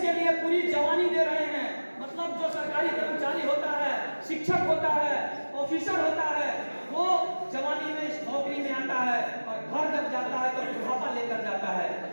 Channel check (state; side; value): inverted; both; correlation -1.00